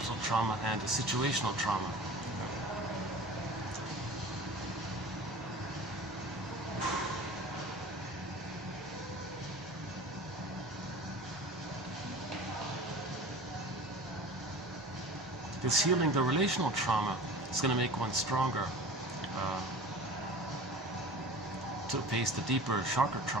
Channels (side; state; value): both; normal; correlation 0.38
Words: trauma and the situational trauma. This healing the relational trauma is going to make one stronger to face the deeper, sharper